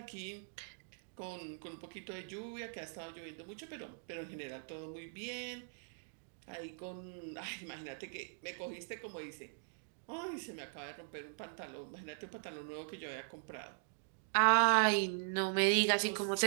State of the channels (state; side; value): silent; left; digital silence